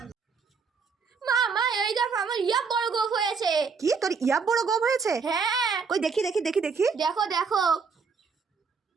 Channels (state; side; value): quieter; left; 5.4 dB